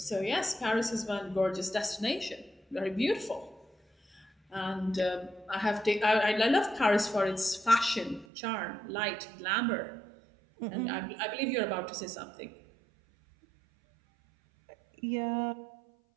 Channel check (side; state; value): left; drops out; at 8.2 s